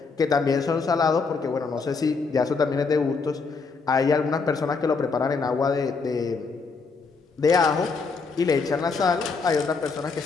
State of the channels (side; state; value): right; quieter; 4.6 dB